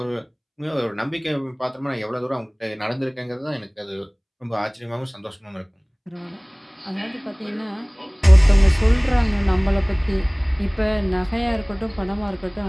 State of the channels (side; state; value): both; identical; correlation 1.00